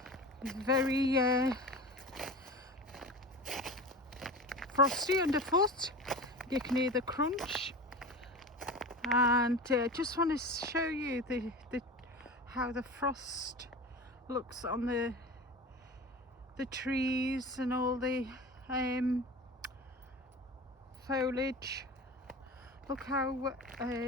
It's very frosty underfoot, you can hear the crunch, and just want to show you how the frost looks on the trees and all the foliage. Look how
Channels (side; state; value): both; normal; correlation 0.32